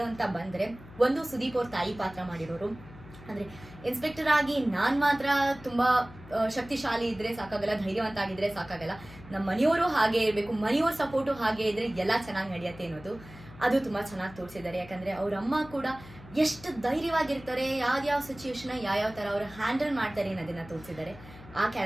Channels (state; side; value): noise; left; hum, 18 dB below the sound